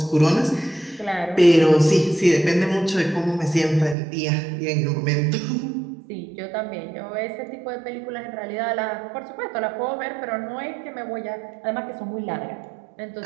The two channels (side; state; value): left; drops out; at 4.0 s